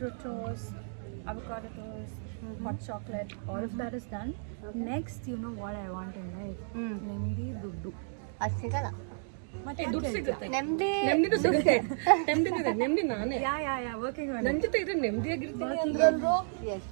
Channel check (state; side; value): silent; left; digital silence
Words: toast, avocado toast, hot chocolate. All of that is done. Next, you know what I want in life? Nemdi duddu. ಅದು ಸಿಗಲ್ಲ. ಮತ್ತೆ ದುಡ್ಡು ಸಿಗುತ್ತೆ. ನೆಮ್ಮದಿ ಸಿಗುತ್ತೆ. ನೆಮ್ಮದಿ ನಾನೇ. Yeah. Working on ನನ್ನ it. ಜೊತೆ ಇದ್ರೆ ನೆಮ್ಮದಿಯಾಗಿರ್ತೀನಿ ಅಂದ್ರೆ. Yes.